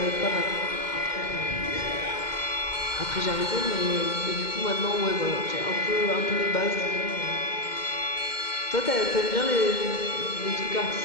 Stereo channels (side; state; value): right; late; 2.1 ms